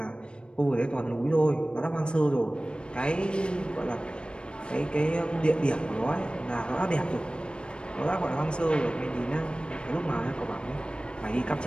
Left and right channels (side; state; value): right; late; 0.055 ms